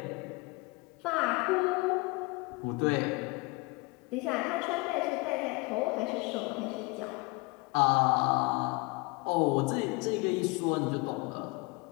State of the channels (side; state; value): right; quieter; 26.8 dB